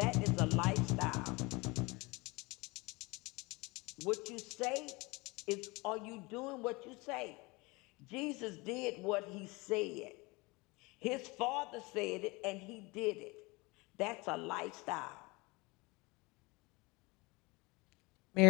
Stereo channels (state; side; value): quieter; right; 24.9 dB